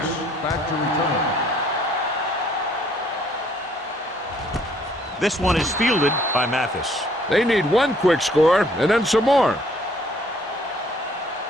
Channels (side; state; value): both; normal; correlation 0.62